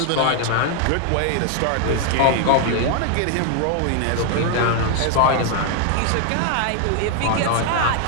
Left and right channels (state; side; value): different; both; correlation 0.00